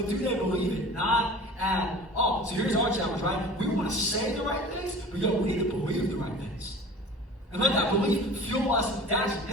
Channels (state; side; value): normal; both; correlation 0.41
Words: do they believe it? Not at all. So here's our challenge, right? We want to say the right things, but yo, we need to believe the right things. And let that belief fuel us to action.